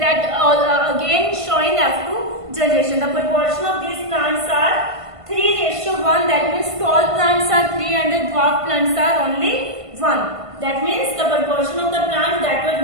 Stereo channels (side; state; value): left; late; 1.5 ms